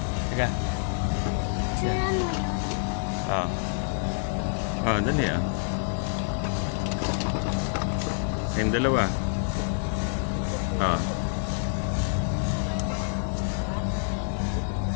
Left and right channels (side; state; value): right; silent; digital silence